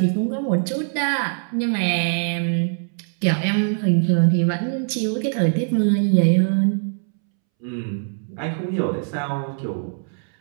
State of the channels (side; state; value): left; silent; 64 dB below the other